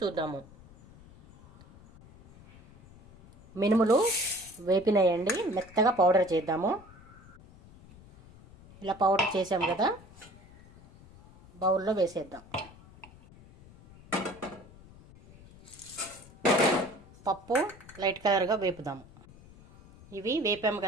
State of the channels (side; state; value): left; noise; rumble, 22 dB below the sound